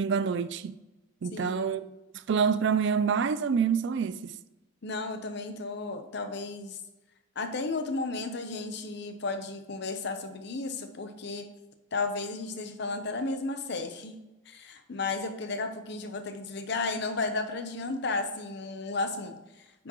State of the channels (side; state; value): both; normal; correlation -0.02